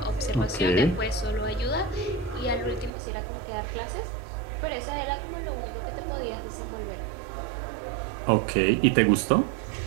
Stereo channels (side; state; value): left; drops out; at 2.9 s